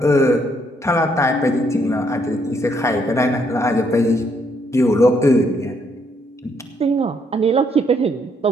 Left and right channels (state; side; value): normal; both; correlation 0.72